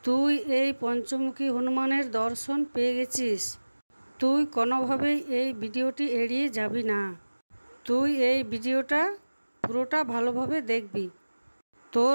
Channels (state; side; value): inverted; both; correlation -1.00